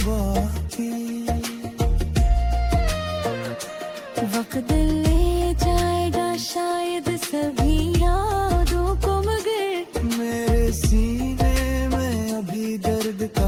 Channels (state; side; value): identical; both; correlation 1.00